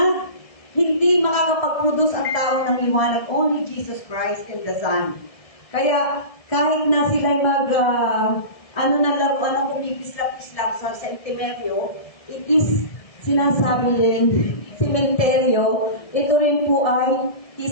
Hindi makakapag-produce ang tao ng liwanag. Only Jesus Christ and the Son. Kaya kahit na sila'y na laruan ang kumikislap-kislap sa sentimeryo, it is sinasabi rin, sementeryo, ito rin po ay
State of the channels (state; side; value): late; right; 1.7 ms